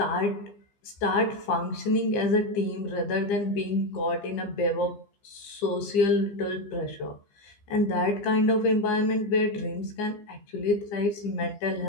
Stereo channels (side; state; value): right; late; 15 ms